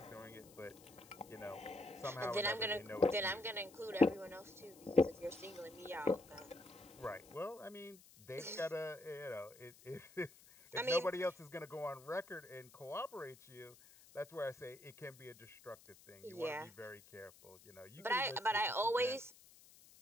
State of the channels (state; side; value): noise; left; hiss, 22 dB below the sound